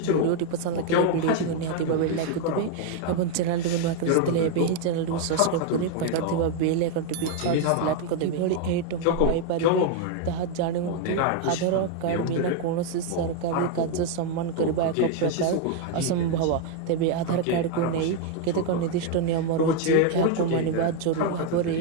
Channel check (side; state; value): both; different; correlation 0.01